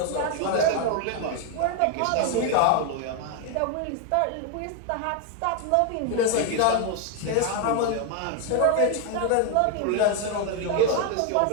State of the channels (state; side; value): different; both; correlation 0.01